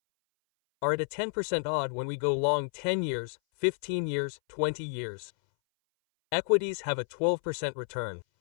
are at a 10% odd when we go long 10 years, 15 years, 20 years. Equities have a 12% return.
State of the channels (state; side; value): silent; right; 58 dB below the other